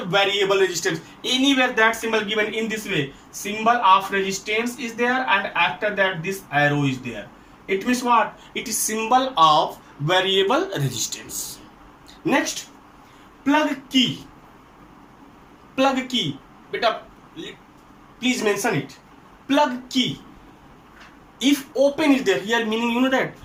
variable resistance, anywhere that symbol given in this way, symbol of resistance is there, and after that this arrow is there. It means what? It is symbol of variable resistance. Next, plug key. Plug key, beta, please mention it. Plug key, if open is there here, meaning you know that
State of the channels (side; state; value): both; identical; correlation 1.00